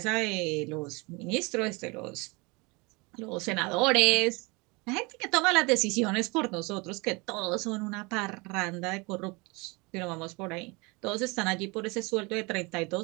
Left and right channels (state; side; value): quieter; left; 27.2 dB